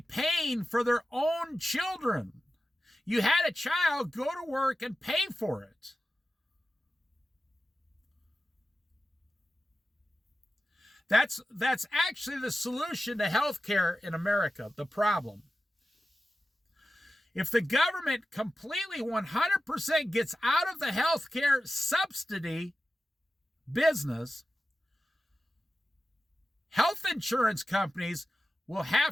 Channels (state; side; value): normal; both; correlation 0.93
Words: for their own children. You had a child, go to work and pay for it. That's actually the solution to healthcare in America, the problem. If the government completely 100% gets out of the healthcare subsidy business, health insurance companies will